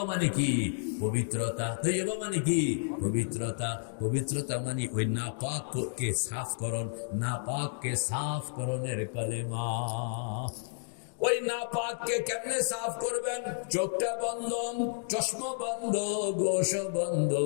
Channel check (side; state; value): right; silent; digital silence